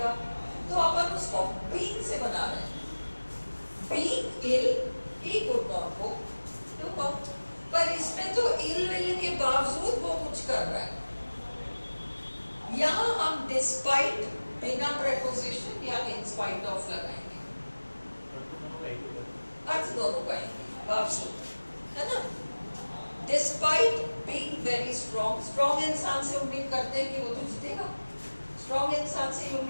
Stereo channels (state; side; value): inverted; both; correlation -1.00